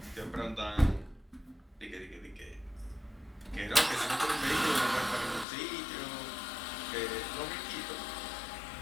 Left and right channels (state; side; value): drops out; right; at 5.5 s